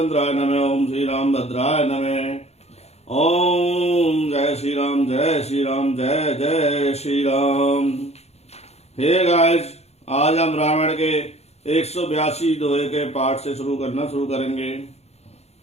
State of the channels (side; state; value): right; late; 0.31 ms